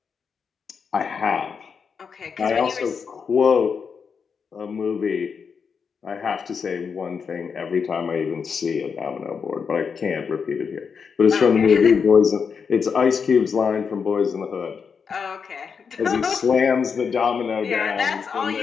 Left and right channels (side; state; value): right; quieter; 6.1 dB